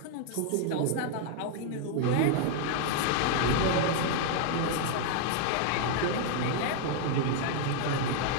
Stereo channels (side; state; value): both; different; correlation 0.00